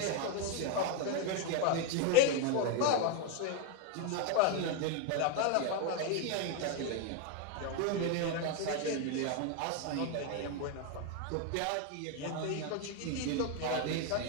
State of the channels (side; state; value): both; different; correlation 0.01